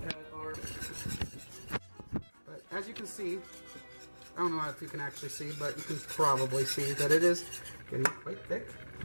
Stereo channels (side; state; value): both; inverted; correlation -1.00